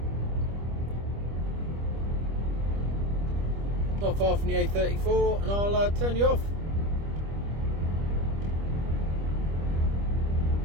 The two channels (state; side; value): late; left; 25 ms